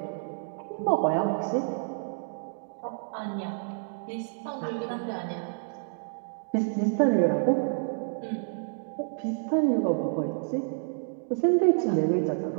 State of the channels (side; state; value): left; silent; digital silence